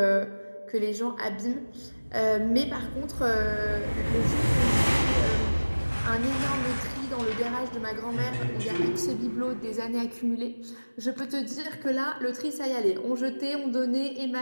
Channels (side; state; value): both; inverted; correlation -1.00